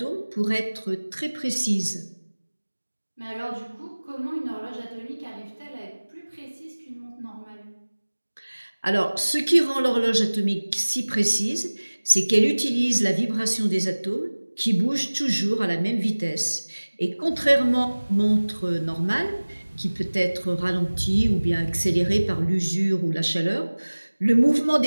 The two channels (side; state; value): both; inverted; correlation -1.00